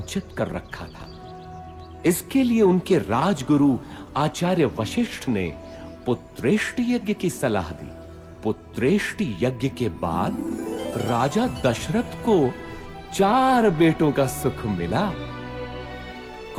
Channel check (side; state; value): both; identical; correlation 1.00